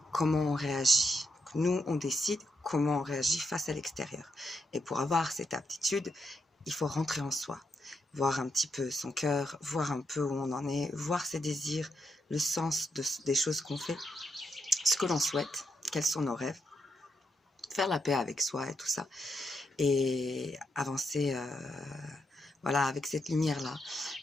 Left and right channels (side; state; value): both; normal; correlation 0.82